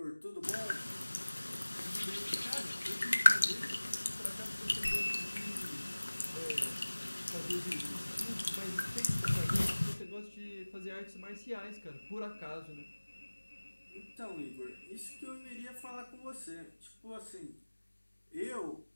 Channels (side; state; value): both; inverted; correlation -1.00